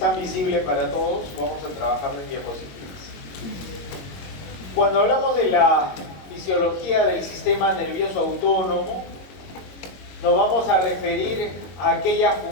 visible para todos, vamos a trabajar en diapositivas. Cuando hablamos de la fisiología del sistema nervioso autónomo, nos vamos a referir a aquella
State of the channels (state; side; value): late; right; 22 ms